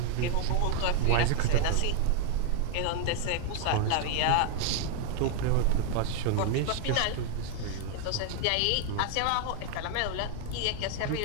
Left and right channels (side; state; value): both; different; correlation 0.00